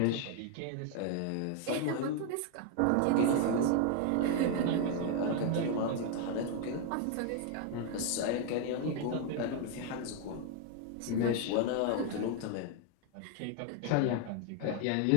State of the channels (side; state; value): both; different; correlation 0.00